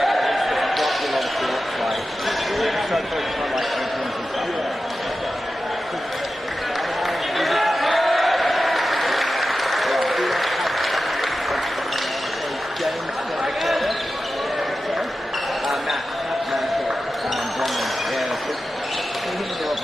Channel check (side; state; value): both; normal; correlation 0.93